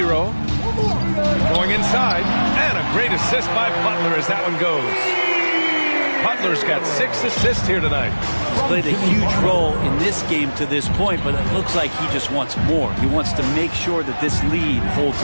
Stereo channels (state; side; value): inverted; both; correlation -1.00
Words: Going inside. And a great assist by Butler as that one goes. Butler's got 6 assists here tonight. He's played a huge role in this game to this point, but it looks like he just wants more. He wants to make sure that this lead holds